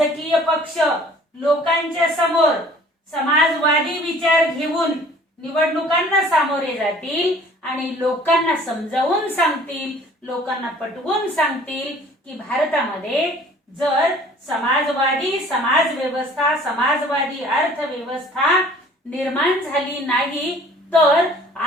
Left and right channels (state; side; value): normal; both; correlation 0.52